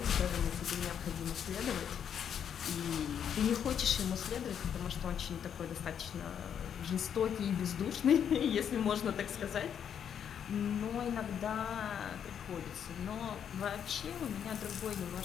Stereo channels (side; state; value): right; quieter; 8.4 dB